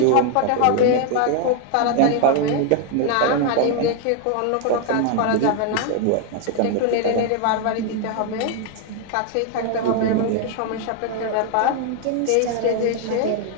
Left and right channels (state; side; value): different; both; correlation 0.00